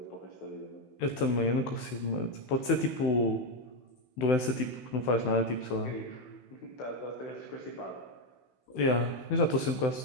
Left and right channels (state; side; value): late; right; 16 ms